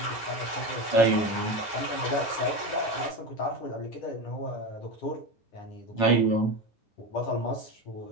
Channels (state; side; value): late; right; 9.5 ms